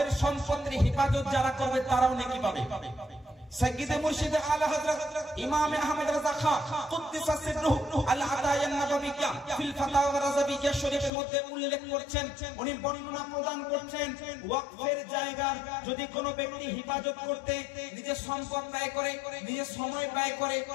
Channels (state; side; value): drops out; right; at 11.1 s